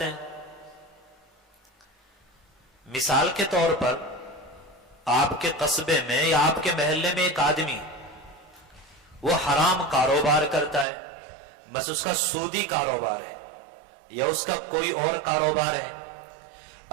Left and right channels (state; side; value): drops out; left; at 10.9 s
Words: ہیں۔ مثال کے طور پر آپ کے قصبے میں یا آپ کے محلے میں ایک آدمی وہ حرام کاروبار کرتا ہے، بس اس کا سودی کاروبار ہے یا اس کا کوئی اور کاروبار ہے۔